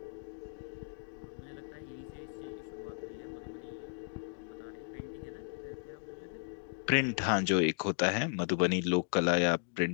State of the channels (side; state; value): right; silent; digital silence